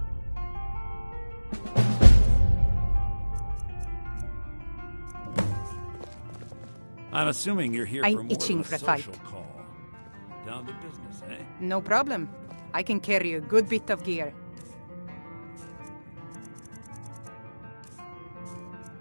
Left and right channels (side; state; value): both; inverted; correlation -1.00